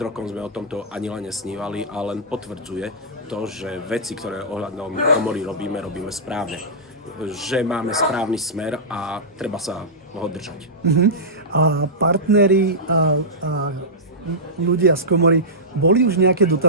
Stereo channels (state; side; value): normal; both; correlation -0.15